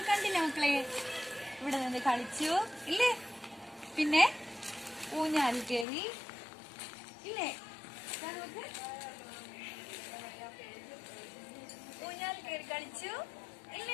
കണ്ടില്ലേ മക്കളെ? ഇവിടെ നിന്ന് കളിച്ചു ഇല്ലേ? പിന്നെ ഊഞ്ഞാലിൽ കയറി ഇല്ലേ? ഊഞ്ഞാലിൽ കയറി കളിച്ചു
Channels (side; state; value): right; drops out; at 5.9 s